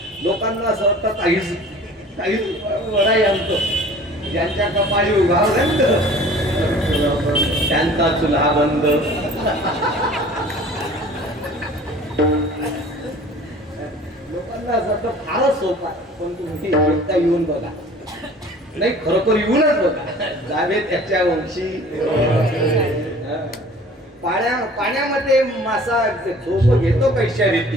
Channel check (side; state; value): both; normal; correlation 0.47